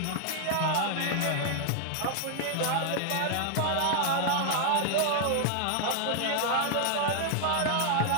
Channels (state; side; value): different; both; correlation 0.00